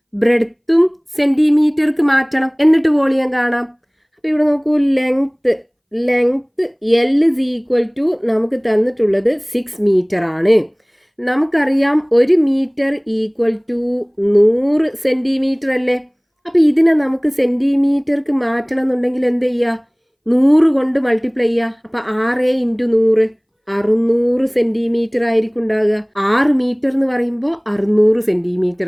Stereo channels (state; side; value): identical; both; correlation 1.00